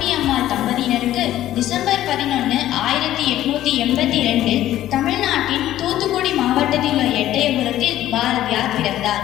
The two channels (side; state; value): right; quieter; 13.4 dB